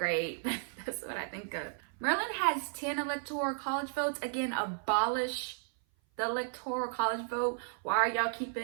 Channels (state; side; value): silent; left; 55 dB below the other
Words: That's what I think of. Maryland has 10 electoral college votes. Again, abolish the electoral college vote. Why are y'all